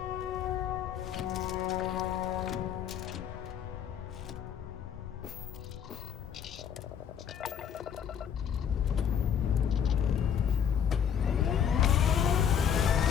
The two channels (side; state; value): right; quieter; 8.3 dB